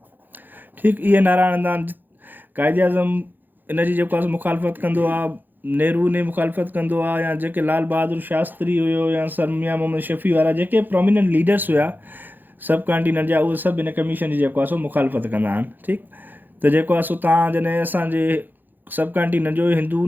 ठीकु. इहे नारा हणंदा आहिनि. कायदे आज़म इन जी जेको आहे मुखालफ़त कंदो आहे, नेहरू ने मुखालफ़त कंदो आहे, या जेके लाल बहादुर शास्त्री हुयो या सर मियां मोहम्मद शफ़ी वारा जेके प्रोमिनेंट लीडर्स हुया सब कॉन्टिनेंट जा, उहे सभु इन कमीशन जी जेको आहे सो मुखालफ़त कंदा आहिनि. ठीकु. त जेको आहे सो तव्हां जॾहिं असांजे सब कॉन्टिनेंट जो हिंदू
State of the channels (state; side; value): late; left; 0.088 ms